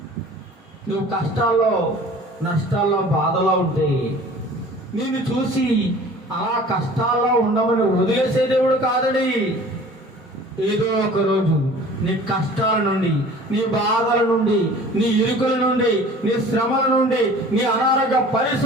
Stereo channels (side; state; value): both; normal; correlation 0.46